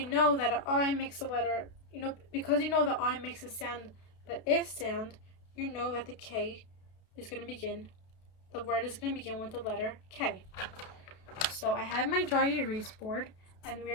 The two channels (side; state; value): right; late; 32 ms